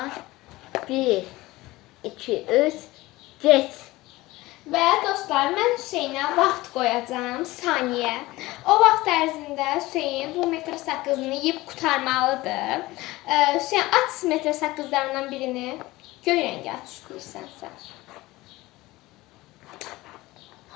1, 2, 3, geç. Və dostlar, mən Hüseynə vaxt qoyacağım, saniyə. O vaxt ərzində Hüseyn bu metr sakızını yeyib qurtarmalıdır. Hüseyn, aç metr sakızlarından birini. Göy rəngi aç istəyirsənsə.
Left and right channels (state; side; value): quieter; right; 19.3 dB